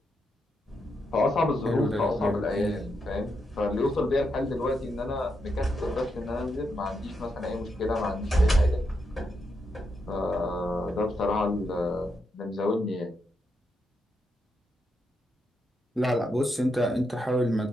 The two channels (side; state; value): both; normal; correlation 0.83